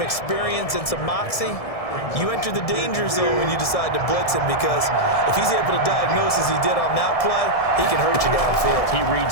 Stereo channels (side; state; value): right; late; 1.7 ms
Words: experience and some moxie, you enter the danger zone when you decide to blitz him because if he's able to diagnose as he did on that play, he can hurt you downfield. He